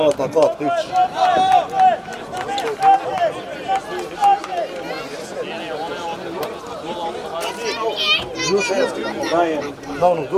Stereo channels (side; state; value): both; identical; correlation 1.00